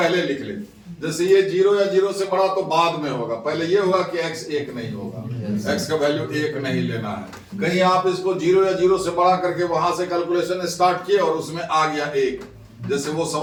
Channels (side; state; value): both; identical; correlation 1.00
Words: लिख ले। जैसे ये जीरो या जीरो से बड़ा तो बाद में होगा, पहले ये होगा कि x एक नहीं होगा, x का वैल्यू एक नहीं लेना है। कहीं आप इसको जीरो या जीरो से बड़ा करके वहां से कैलकुलेशन स्टार्ट किए और उसमें आ गया एक, जैसे वो